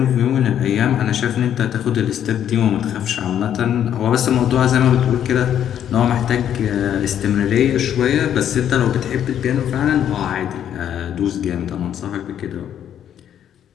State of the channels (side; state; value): right; quieter; 9.9 dB